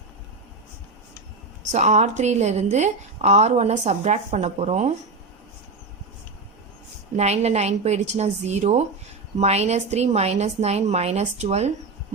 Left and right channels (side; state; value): left; quieter; 3.8 dB